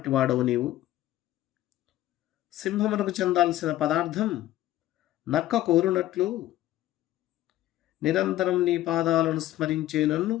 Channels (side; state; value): right; quieter; 14.3 dB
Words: వాడవు నీవు. సింహమునకు చెందాల్సిన పదార్థం నక్క కోరునట్లు నిరంతరం నీ పాదాలను స్మరించే నన్ను